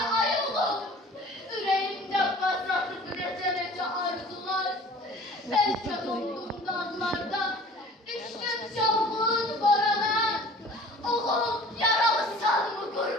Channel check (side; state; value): both; normal; correlation 0.47